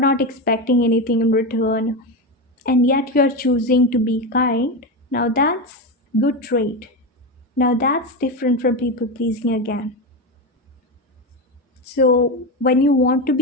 expecting anything in return, and yet you're choosing to be kind, now that's good trait. Now that's different from people pleasing again. So when you want to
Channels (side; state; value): both; normal; correlation 0.16